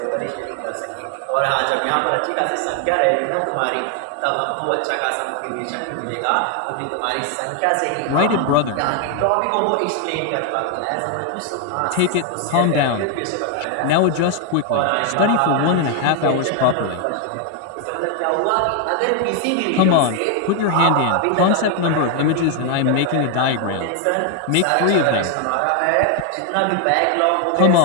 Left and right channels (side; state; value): both; different; correlation 0.00